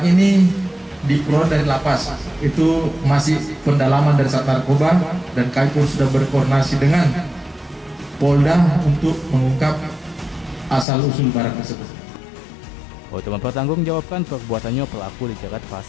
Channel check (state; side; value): drops out; right; at 10.9 s